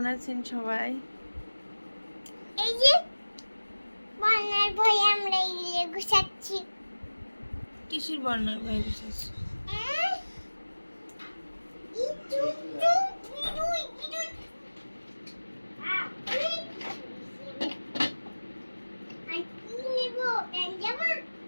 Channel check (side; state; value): both; inverted; correlation -1.00